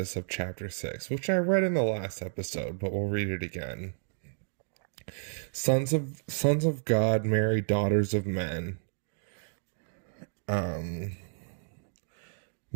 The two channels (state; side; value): silent; left; digital silence